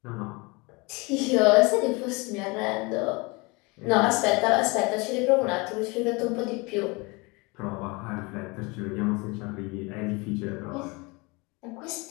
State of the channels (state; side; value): quieter; right; 26.7 dB